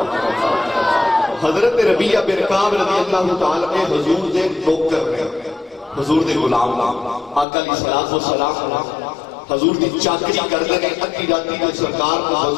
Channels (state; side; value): drops out; right; at 7.5 s